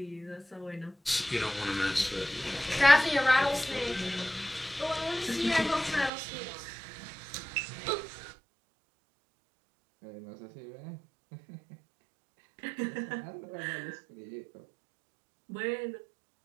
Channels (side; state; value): left; drops out; at 6.1 s